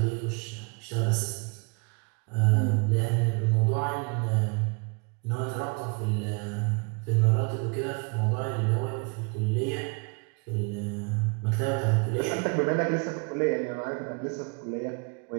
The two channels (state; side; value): quieter; left; 33.0 dB